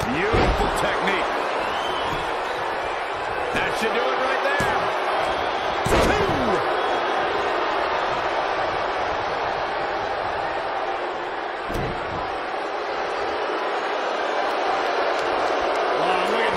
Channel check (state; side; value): identical; both; correlation 1.00